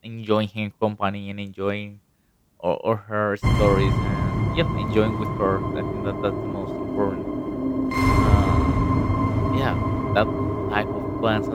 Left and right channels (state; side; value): identical; both; correlation 1.00